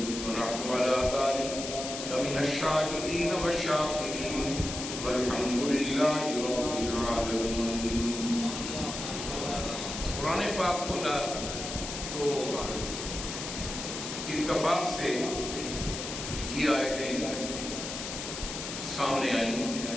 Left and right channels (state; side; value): noise; left; hiss, 6 dB below the sound